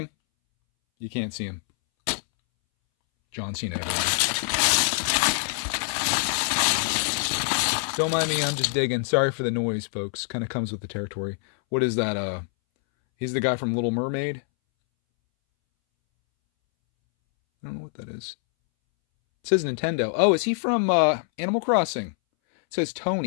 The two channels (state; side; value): silent; right; 62 dB below the other